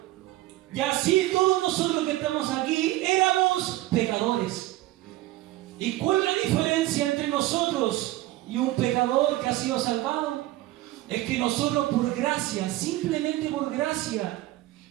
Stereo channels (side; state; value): left; quieter; 16.9 dB